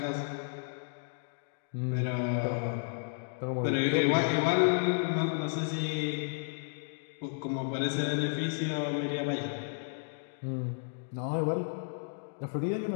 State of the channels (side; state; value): right; silent; digital silence